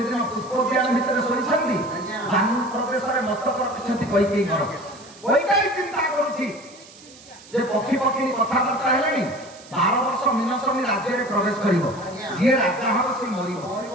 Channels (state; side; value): noise; right; hiss, 21 dB below the sound